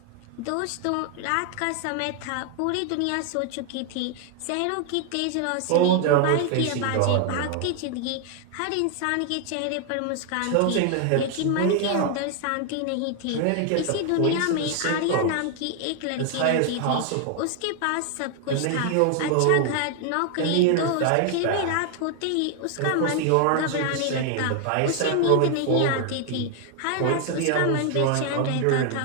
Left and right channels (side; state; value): both; different; correlation 0.00